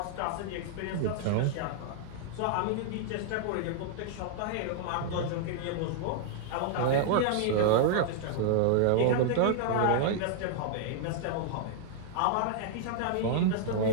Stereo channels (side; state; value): both; different; correlation -0.01